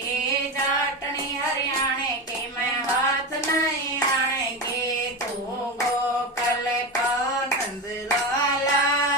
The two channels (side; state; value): both; normal; correlation 0.19